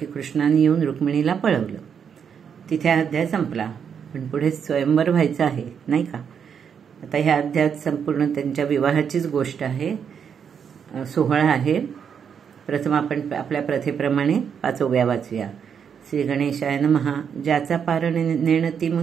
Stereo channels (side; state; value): left; quieter; 7.3 dB